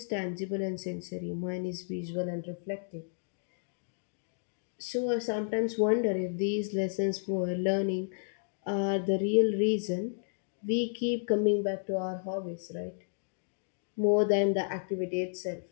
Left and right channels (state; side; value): silent; right; digital silence